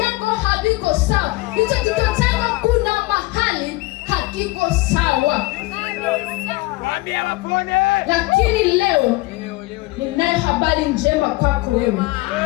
haviko sawa. Hicho kichwa chako kuna mahali hakiko sawa. Lakini leo ninayo habari njema kwako wewe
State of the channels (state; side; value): quieter; right; 21.3 dB